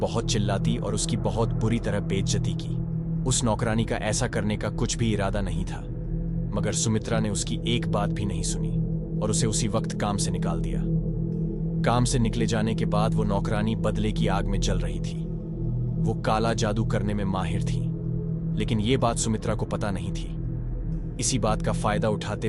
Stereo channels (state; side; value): identical; both; correlation 1.00